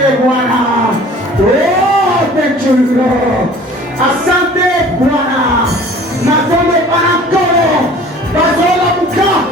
Bwana oh thank you Lord asante Bwana natombe panakoro bazola muka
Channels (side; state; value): both; normal; correlation 0.47